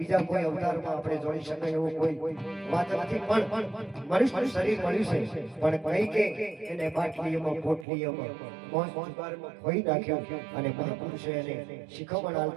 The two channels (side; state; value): left; drops out; at 7.9 s